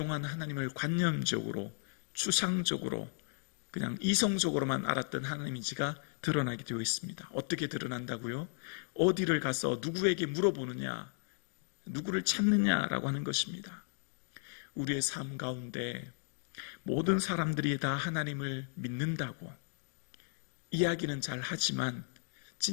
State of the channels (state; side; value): silent; right; 54 dB below the other